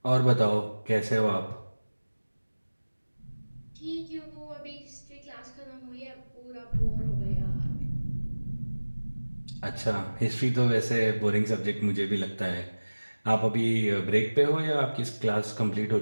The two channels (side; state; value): both; inverted; correlation -1.00